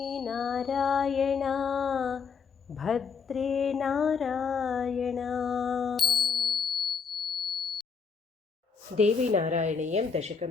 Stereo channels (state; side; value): quieter; right; 5.6 dB